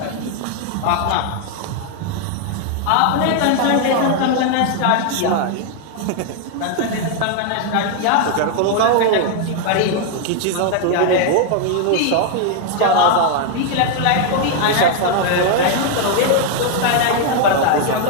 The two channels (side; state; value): both; different; correlation 0.00